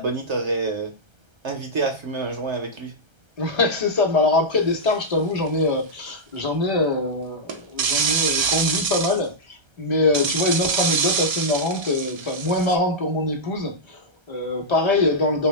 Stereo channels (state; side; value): late; left; 1.3 ms